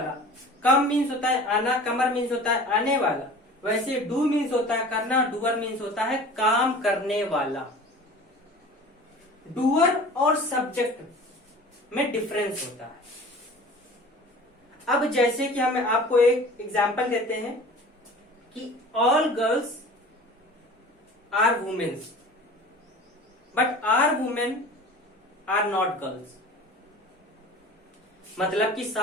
कम मीन्स होता है आना, कमर मीन्स होता है आने वाला, वैसे डू मीन्स होता है करना, डूअर मीन्स होता है काम करने वाला। डूअर और सब्जेक्ट में डिफरेंस होता है। अब जैसे कि हम आपको एक एग्जांपल देते हैं कि all girls are womens but are women are not girls. मतलब कि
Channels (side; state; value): both; normal; correlation 0.41